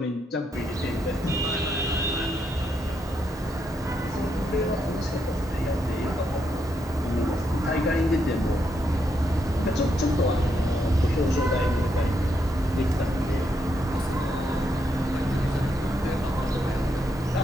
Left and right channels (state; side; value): normal; both; correlation 0.79